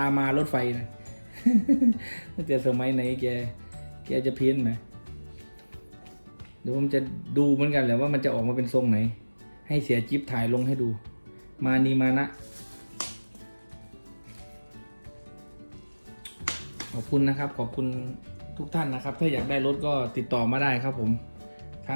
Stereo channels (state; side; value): inverted; both; correlation -1.00